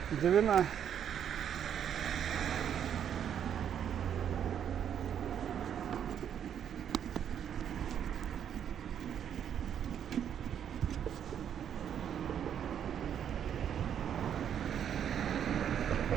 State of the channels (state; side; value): quieter; left; 9.0 dB